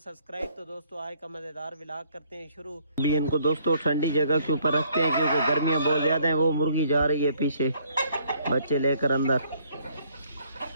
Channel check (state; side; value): inverted; both; correlation -0.65